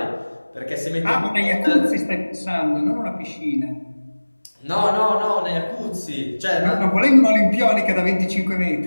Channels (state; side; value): inverted; both; correlation -1.00